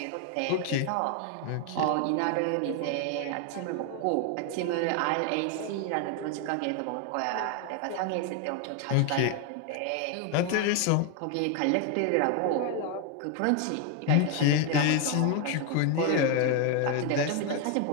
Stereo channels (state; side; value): different; both; correlation 0.01